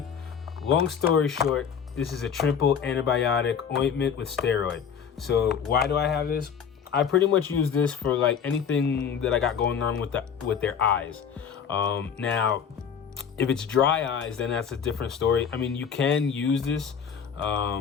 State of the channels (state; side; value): quieter; right; 7.3 dB